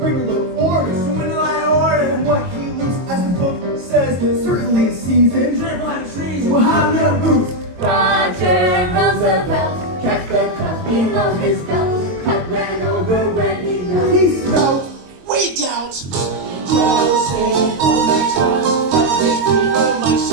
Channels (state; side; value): late; left; 22 ms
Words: a little order, so in line order, and what he looks, as the book says, certainly is seasoned. Dribble and trees, we'll have no boots. Roger Roosevelt kept the cup below his belt. Cup ran over when he knelt. He smelled. We doubt. Joseph Urinetown, cut his feet for my